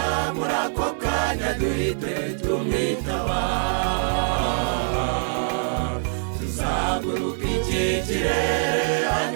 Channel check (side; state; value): left; silent; 63 dB below the other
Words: muri ako kanya duhite tumwitaba. Tuzaguruka iki kirere